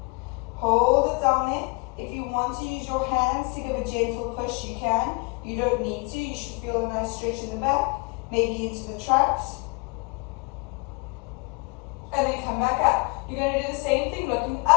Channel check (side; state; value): right; quieter; 29.5 dB